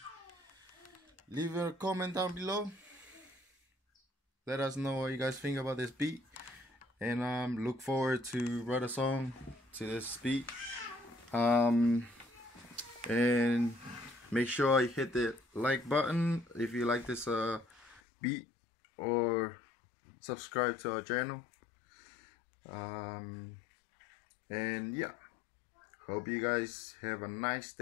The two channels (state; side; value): drops out; right; at 18.0 s